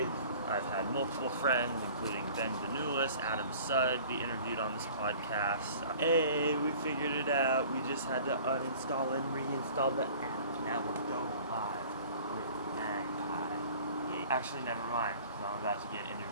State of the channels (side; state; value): both; inverted; correlation -0.47